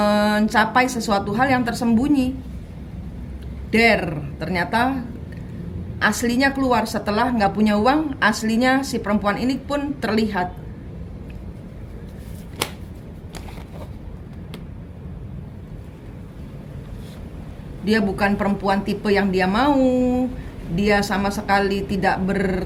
sesuatu hal yang tersembunyi. Ternyata aslinya keluar setelah nggak punya uang, aslinya si perempuan ini pun terlihat. Dia bukan perempuan tipe yang dia mau. Dia sama sekali tidak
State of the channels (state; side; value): identical; both; correlation 1.00